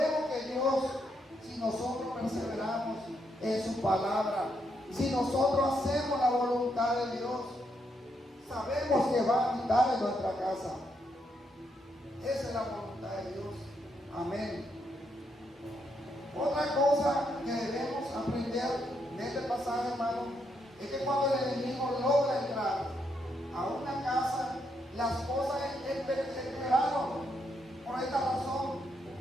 que Dios, si nosotros perseveramos en su palabra, si nosotros hacemos la voluntad de Dios, sabemos que va a habitar en nuestra casa. Esa es la voluntad de Dios. Amén. Otra cosa que debemos aprender de este pasaje, hermano, es que cuando el enemigo logra entrar a una casa, las cosas empeoraron. Por esta razón,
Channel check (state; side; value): normal; both; correlation 0.78